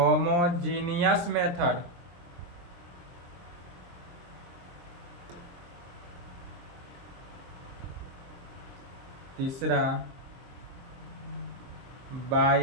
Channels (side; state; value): left; late; 23 ms